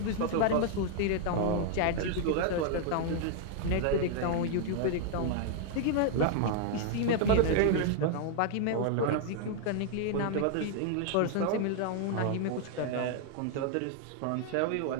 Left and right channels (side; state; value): both; different; correlation 0.00